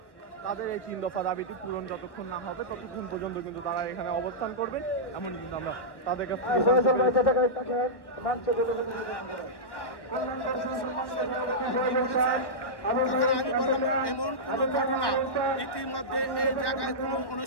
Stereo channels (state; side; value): late; right; 1.0 ms